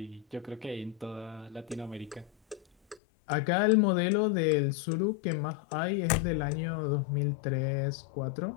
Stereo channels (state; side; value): drops out; right; at 3.0 s